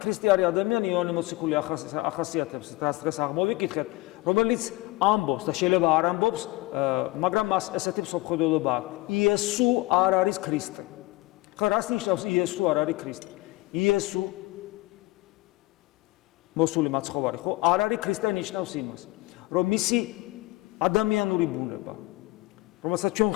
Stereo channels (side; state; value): right; quieter; 21.1 dB